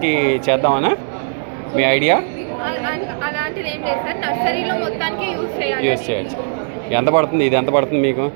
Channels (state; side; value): silent; left; digital silence